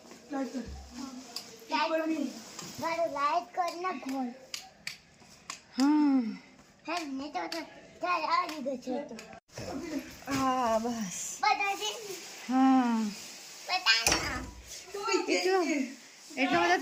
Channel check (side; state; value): both; identical; correlation 1.00